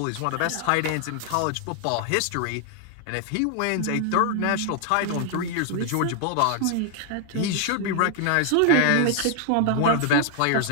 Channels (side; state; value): both; different; correlation 0.00